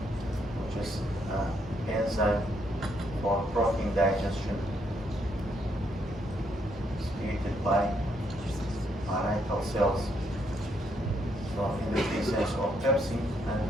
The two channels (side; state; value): both; normal; correlation 0.74